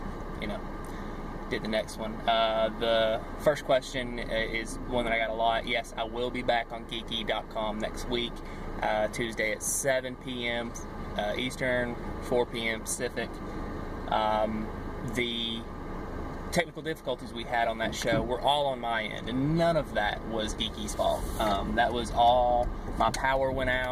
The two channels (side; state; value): both; identical; correlation 1.00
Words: did the next one. The first question is one that I got a lot. Yes, I will be back on geeky.com next week, Tuesday at 7 p.m. Eastern, 4 p.m. Pacific. The technical difficulties we had on that show were all on my end, and none of that was Geeky's fault. That was all, my power went